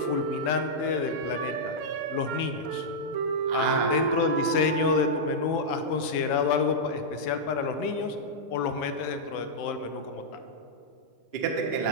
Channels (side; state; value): right; late; 6.6 ms